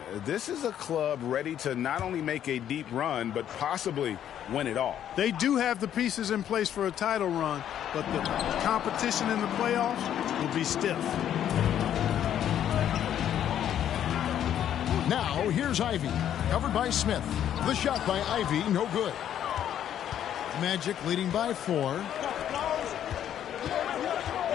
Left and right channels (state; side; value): quieter; right; 10.3 dB